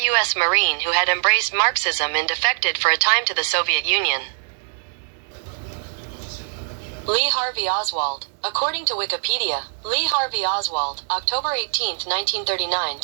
Marine who had embraced Marxism and defected for a time to the Soviet Union. Lee Harvey Oswald. According to Wikipedia, Lee Harvey Oswald, October 18, 1939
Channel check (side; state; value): left; silent; digital silence